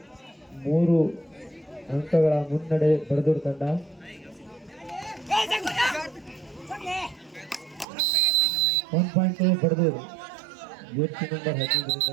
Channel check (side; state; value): left; drops out; at 7.9 s